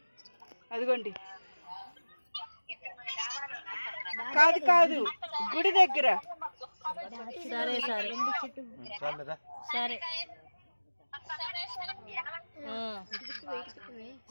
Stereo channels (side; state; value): both; inverted; correlation -1.00